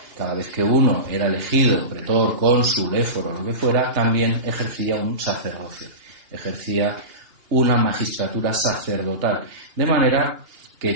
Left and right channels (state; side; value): late; left; 2.8 ms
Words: cada vez que uno era elegido, pretor, cónsul, éforo, lo que fuera, también ejercía un sacerdocio. Ejercía una magistratura sacerdotal. De manera que